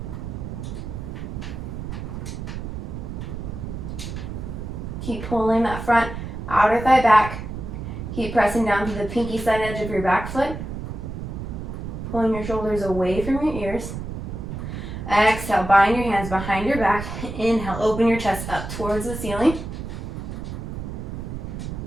Keep pulling that front outer thigh back. Keep pressing down to the pinky side edge of your back foot. Pulling your shoulders away from your ears. Exhale, bind your hands behind your back. Inhale, open your chest up towards the ceiling.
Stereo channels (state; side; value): noise; right; rumble, 7 dB below the sound